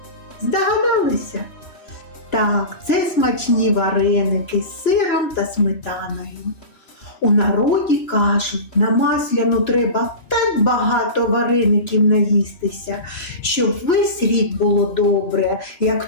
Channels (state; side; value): late; right; 2.3 ms